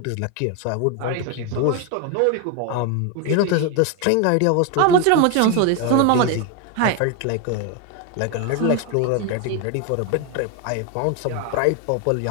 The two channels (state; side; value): different; both; correlation 0.02